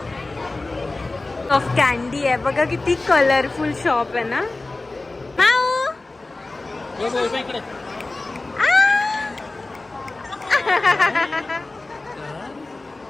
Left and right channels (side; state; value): right; quieter; 3.2 dB